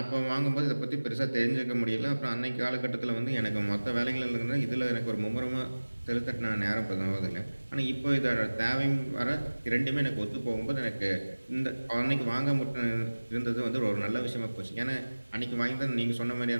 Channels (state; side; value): inverted; both; correlation -1.00